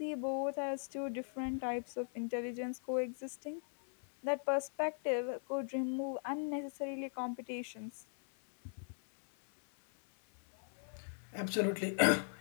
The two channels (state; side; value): silent; right; 52 dB below the other